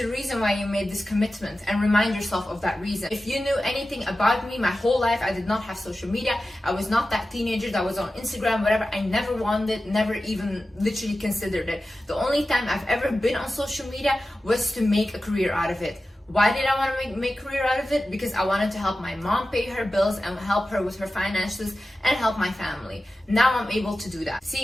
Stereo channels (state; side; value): normal; both; correlation 0.94